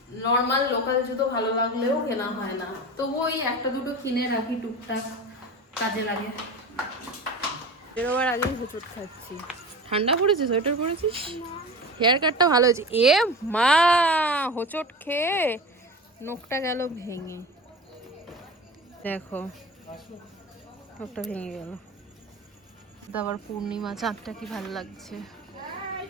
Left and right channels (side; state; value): both; normal; correlation 0.31